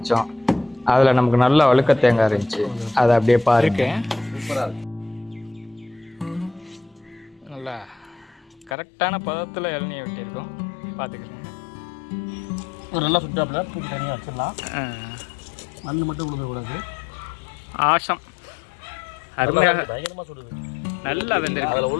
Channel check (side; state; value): right; drops out; at 8.8 s